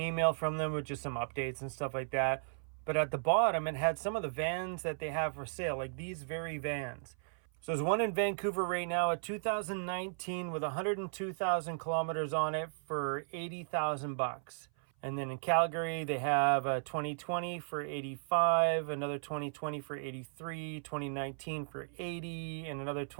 from them with just some updates and stuff like that. But at the bottom, it had some of the vans that they have for sale, like these very vans. So there's one in Vancouver right now, a 2019 with 102,000 kilometers on it for $80,000. And then in Calgary, they have a 2020 for 85, another 2020 for 83, 2019 for 80, and another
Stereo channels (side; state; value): left; silent; 54 dB below the other